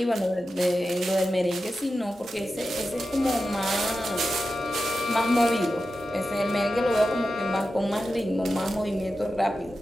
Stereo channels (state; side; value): normal; both; correlation 0.92